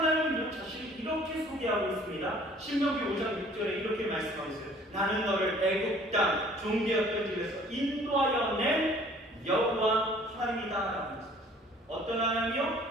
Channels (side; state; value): both; normal; correlation 0.54